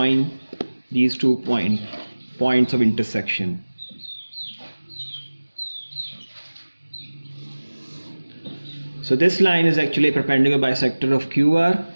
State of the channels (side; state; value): both; inverted; correlation -1.00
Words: these two points of intersection. So this line is actually a perpendicular bisector of QR,